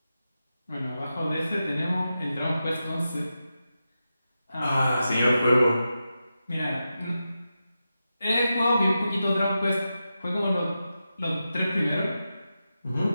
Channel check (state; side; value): inverted; both; correlation -0.90